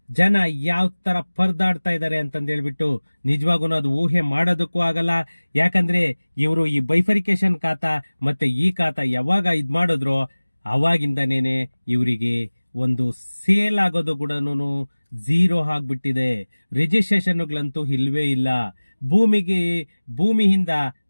ಜನ ಯಾವ ತರ ಪರದಾಡ್ತಾ ಇದ್ದಾರೆ ಅಂತಂದೇಳ್ಬಿಟ್ಟು ನಿಜವಾಗೂ ಅದು ಊಹೆ ಮಾಡೋದಕ್ಕೂ ಆಗಲ್ಲ. ಯಾಕಂದ್ರೆ ಇವರು ಈ ಬೈಫರಿಕೇಶನ್ ಖಾತಾ ಮತ್ತೆ ಈ ಖಾತಾ ಯಾವಾಗ ಇದ್ ಮಾಡಿದ್ರು, ಅವಾಗಿಂದನೇನೆ ಇವರಿಗೆ ಒಂದು ಸೇಲ್ ಆಗೋದು ಕೂಡ ಝೀರೋ ಆಗ್ಬಿಟ್ಟಿದೆ. ರಿಜಿಸ್ಟ್ರೇಷನ್ಗಳಂತೂ ಇಲ್ವೇ ಇಲ್ಲ. ಭೂಮಿಯಿಂದ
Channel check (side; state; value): both; inverted; correlation -1.00